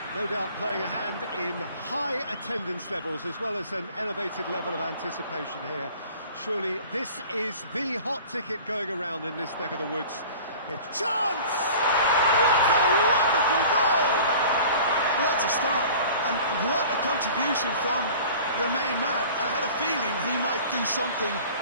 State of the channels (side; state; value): both; inverted; correlation -0.43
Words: No doubt playing a hand in high attendance levels as well as an elevated level of anticipation here. Surely this is the hot ticket going around in this neck of the woods. It's chance! What a wonderful goal! What a start, and what a contribution from the main man. I had a feeling he might do something